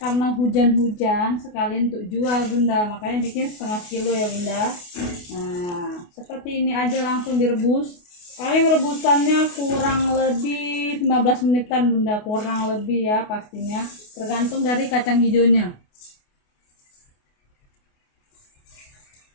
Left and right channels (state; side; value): late; right; 28 ms